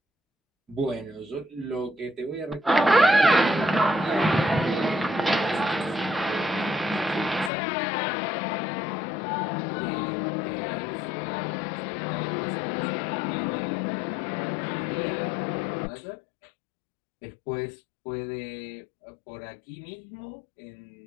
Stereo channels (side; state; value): right; drops out; at 7.5 s